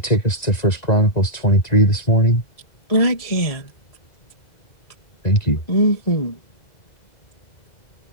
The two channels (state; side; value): late; right; 1.9 ms